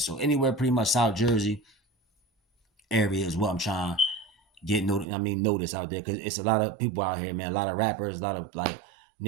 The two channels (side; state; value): left; drops out; at 5.1 s